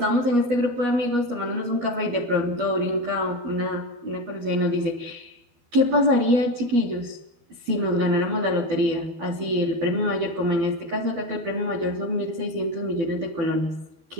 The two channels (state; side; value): late; left; 12 ms